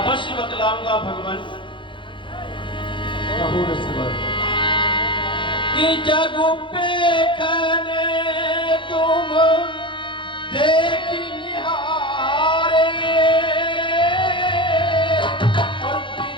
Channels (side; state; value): right; late; 0.24 ms